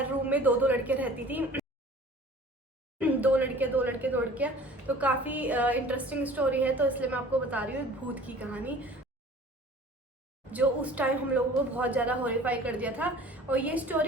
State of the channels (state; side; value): normal; both; correlation 0.46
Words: रूम में दो दो लड़कियां रहती थी, दो लड़कियां। तो काफ़ी इंटरेस्टिंग स्टोरी है, तो इसलिए मैं आपको बता रही हूँ भूत की कहानी, जो उस टाइम हम लोगों को बहुत ज़्यादा हॉरिफाई कर दिया था। और ये